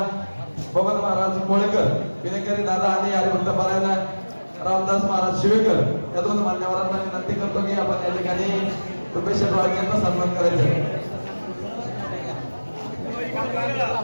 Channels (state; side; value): inverted; both; correlation -1.00